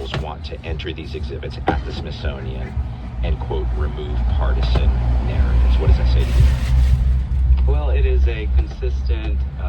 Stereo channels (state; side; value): identical; both; correlation 1.00